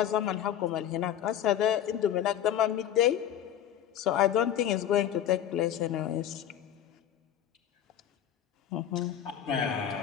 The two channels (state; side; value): quieter; right; 10.4 dB